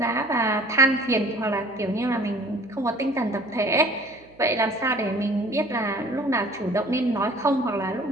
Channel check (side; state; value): right; noise; hum, 26 dB below the sound